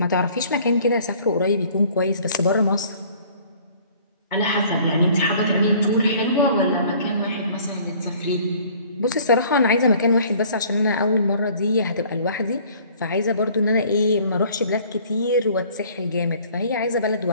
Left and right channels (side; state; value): both; inverted; correlation -0.54